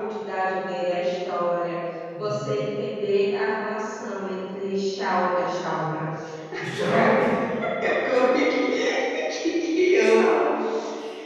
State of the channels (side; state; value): both; identical; correlation 1.00